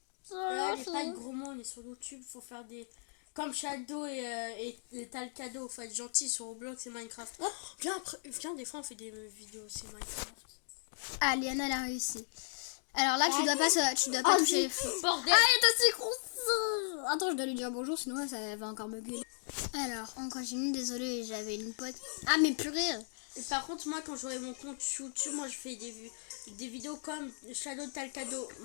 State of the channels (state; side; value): silent; right; digital silence